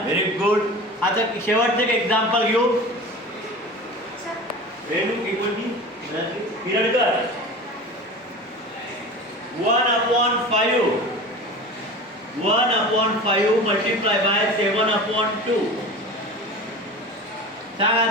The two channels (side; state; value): both; normal; correlation 0.34